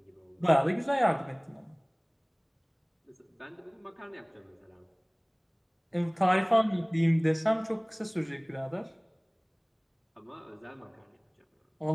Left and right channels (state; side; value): identical; both; correlation 1.00